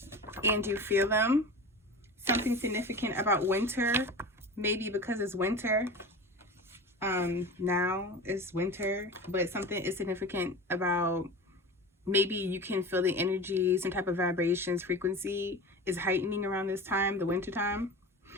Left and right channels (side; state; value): both; normal; correlation 0.31